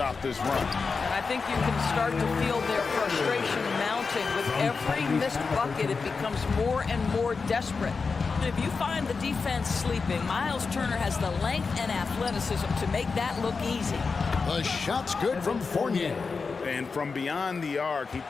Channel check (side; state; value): right; quieter; 4.7 dB